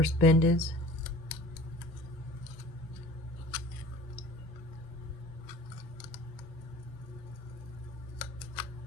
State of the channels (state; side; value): normal; both; correlation 0.44